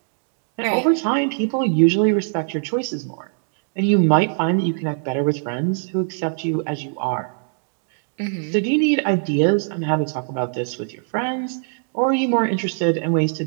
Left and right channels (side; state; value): left; silent; digital silence